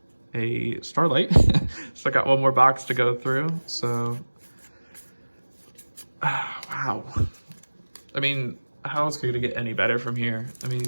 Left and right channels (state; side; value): inverted; both; correlation -1.00